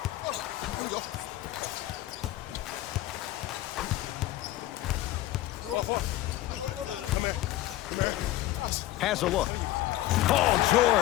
Has a look. Paul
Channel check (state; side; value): quieter; right; 15.3 dB